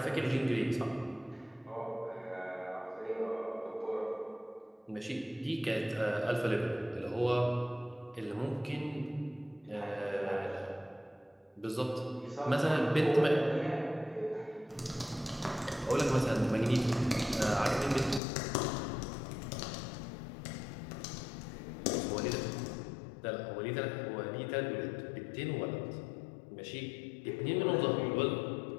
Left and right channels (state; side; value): drops out; right; at 18.2 s